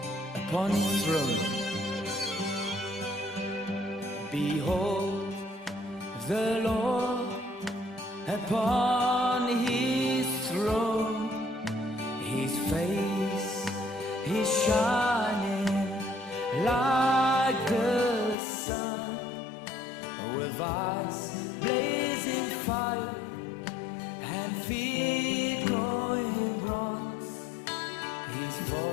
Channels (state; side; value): drops out; right; at 18.4 s